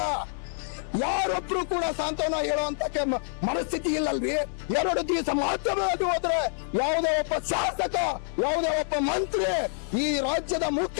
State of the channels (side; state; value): right; silent; 60 dB below the other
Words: ಯಾರೊಬ್ರು ಕೂಡ ಸಾಂತ್ವನ ಹೇಳುವಂತ ಮನಸ್ಥಿತಿ ಇಲ್ಲಲ್ರಿ. 2 ದಿವಸ ಮಾಧ್ಯಮವಾಗಿ ಹೋದ್ರೆ ಯಾವುದೇ ಒಬ್ಬ ಶಾಸಕ, ಯಾವುದೇ ಒಬ್ಬ ಮಂತ್ರಿ, ಈ ರಾಜ್ಯದ